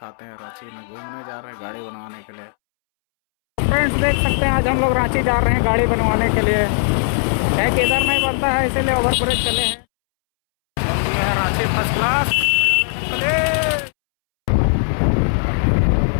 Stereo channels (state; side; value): silent; right; 67 dB below the other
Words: हैं। रांची में घूमने जा रहे हैं गाड़ी बनवाने के लिए। फ्रेंड्स देख सकते हैं आज हम लोग रांची जा रहे हैं गाड़ी बनवाने के लिए। क्या किधर नहीं बनता है इसीलिए ओवर ब्रिज चले हैं। ये है रांची फर्स्ट क्लास।